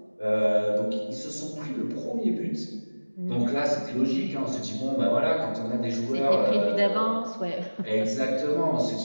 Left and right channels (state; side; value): inverted; both; correlation -1.00